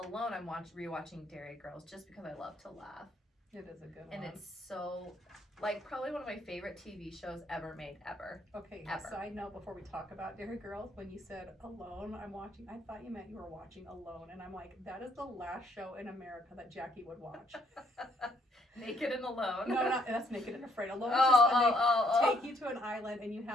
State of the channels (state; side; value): normal; both; correlation 0.69